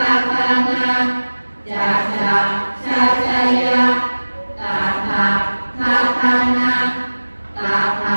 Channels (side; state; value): both; inverted; correlation -1.00